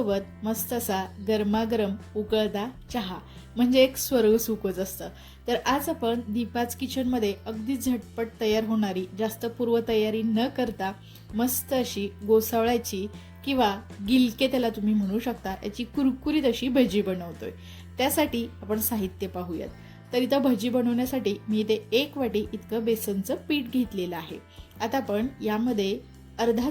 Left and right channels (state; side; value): identical; both; correlation 1.00